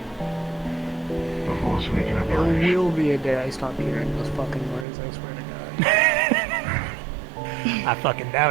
There will be a day I stop hearing those fucking words, I swear to God. I fucking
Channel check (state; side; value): drops out; left; at 4.9 s